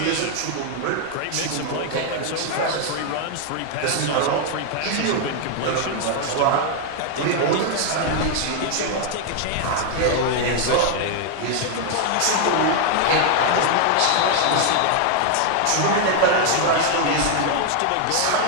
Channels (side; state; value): both; different; correlation 0.00